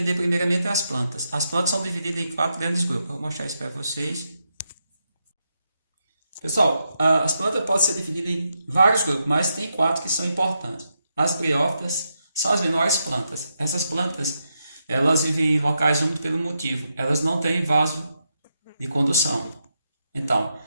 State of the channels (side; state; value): both; inverted; correlation -0.84